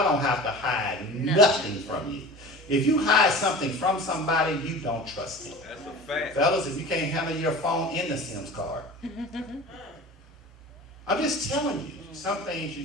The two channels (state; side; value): normal; both; correlation 0.37